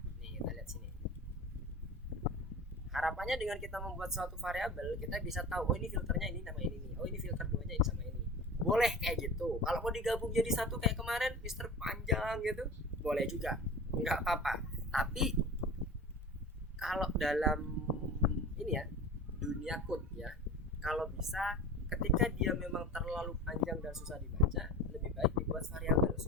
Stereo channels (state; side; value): normal; both; correlation 0.35